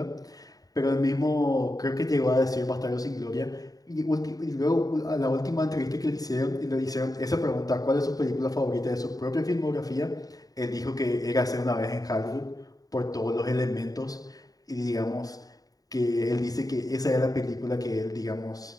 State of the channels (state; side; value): late; right; 0.18 ms